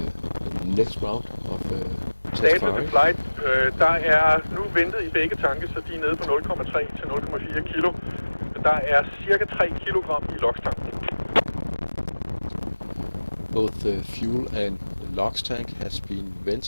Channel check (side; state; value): both; inverted; correlation -1.00